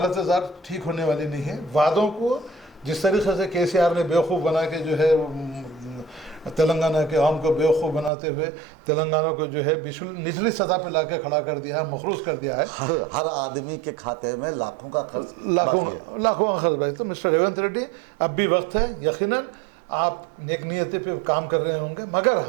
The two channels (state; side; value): drops out; left; at 8.1 s